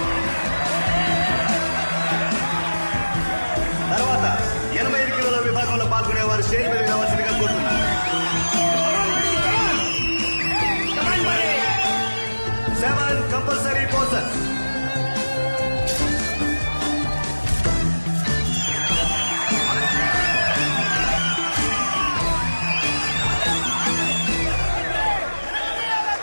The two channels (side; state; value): both; inverted; correlation -1.00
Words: తర్వాత 85 కిలోల విభాగంలో పాల్గొనేవారు స్టేజ్ మీద రావాల్సిందిగా కోరుతున్నారు. 7 కంపల్సరీ పోసర్.